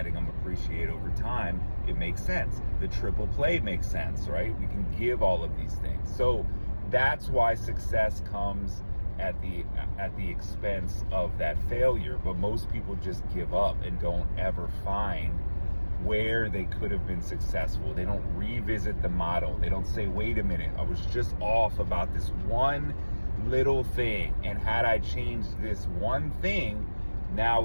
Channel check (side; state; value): both; inverted; correlation -1.00